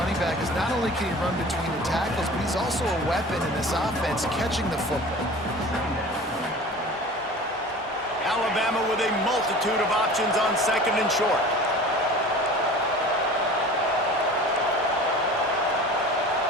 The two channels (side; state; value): both; normal; correlation 0.40